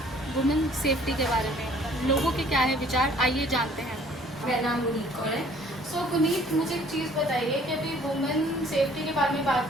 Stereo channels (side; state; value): both; normal; correlation 0.56